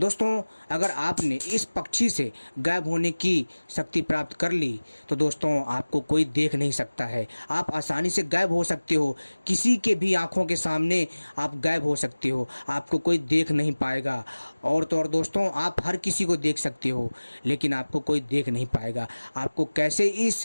अगर आपने इस पक्षी से गायब होने की शक्ति प्राप्त कर ली तो दोस्तों आपको कोई देख नहीं सकता है। आप आसानी से गायब हो सकते हो, किसी के भी आंखों के सामने आप गायब हो सकते हो, आपको कोई देख नहीं पाएगा। और तो और दोस्तों, आप हर किसी को देख सकते हो लेकिन आपको कोई देख नहीं पाएगा। आपको कैसे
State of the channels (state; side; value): inverted; both; correlation -1.00